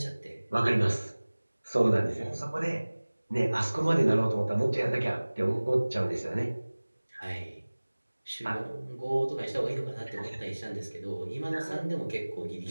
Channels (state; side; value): inverted; both; correlation -1.00